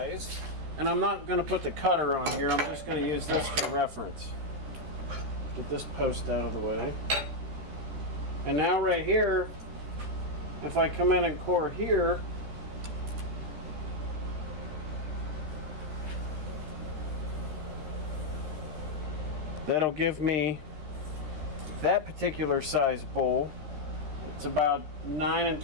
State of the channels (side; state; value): left; late; 13 ms